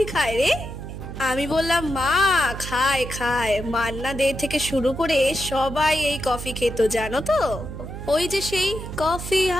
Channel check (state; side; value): noise; right; hum, 9 dB below the sound